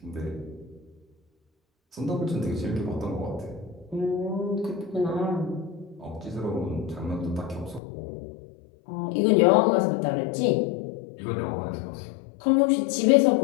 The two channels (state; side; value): drops out; right; at 7.8 s